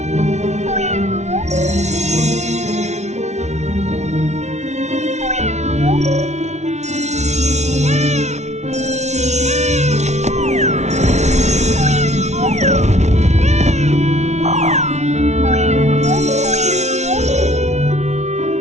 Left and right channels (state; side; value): late; left; 0.32 ms